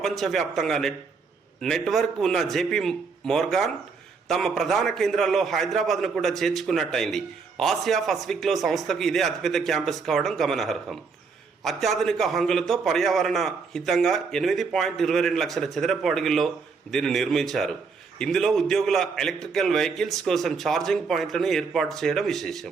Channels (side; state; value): left; quieter; 5.0 dB